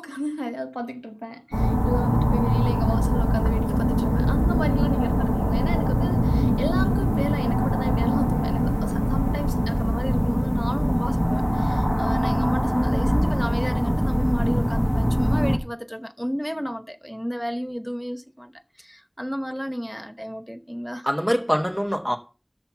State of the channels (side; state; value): both; identical; correlation 1.00